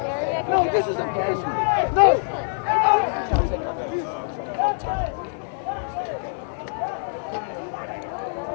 No, this is a peaceful. No.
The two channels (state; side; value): silent; right; 62 dB below the other